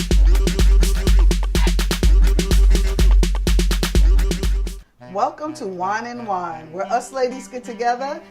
Welcome to Wine and Whine, where us ladies get together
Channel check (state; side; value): identical; both; correlation 1.00